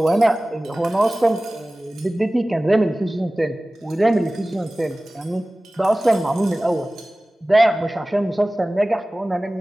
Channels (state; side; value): normal; both; correlation 0.97